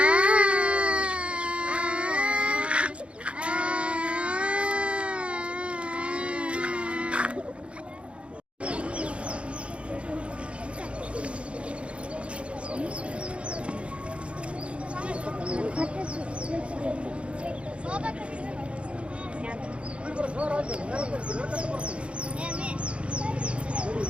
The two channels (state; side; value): late; left; 0.060 ms